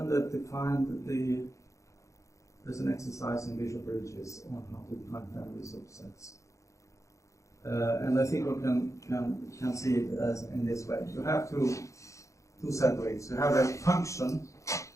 that defined there's an exercise in Bishop Bridges on how to define families of sets. And I think one can see it as in this way. You have two setoids. You have a function,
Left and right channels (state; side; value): late; right; 0.15 ms